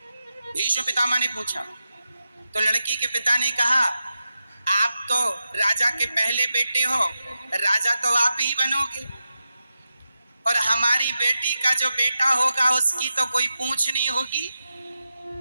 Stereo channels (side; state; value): both; inverted; correlation -0.90